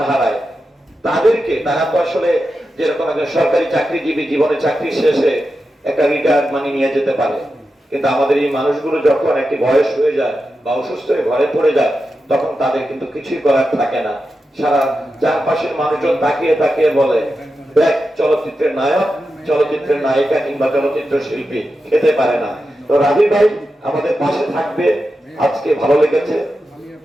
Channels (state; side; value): normal; both; correlation 0.90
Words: হারায়, তাদেরকে, তারা তো আসলে যেরকম একজন সরকারি চাকরিজীবী জীবনে চাকরি শেষে একটা রিটায়ার্ড মানি নিয়ে যেতে পারে, কিন্তু আমাদের এই মানুষগুলো যখন একটি বয়স হয়ে যায় বা অসুস্থ হয়ে ঘরে পড়ে যায়, তখন তাদের কিন্তু কিছুই করার থাকে না। সারা চারপাশের মানুষজন তাকিয়ে তাকিয়ে বলে, দেখ চলচ্চিত্রের নায়ক, চলচ্চিত্রের নায়িকা কিংবা চলচ্চিত্র শিল্পী খেতে পারে না। তো রাফি ভাই আমাদের পাশে থাকবে, আজকে ভালো লেগেছে।